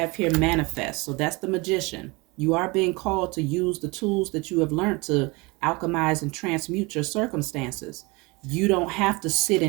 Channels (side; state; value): left; quieter; 25.9 dB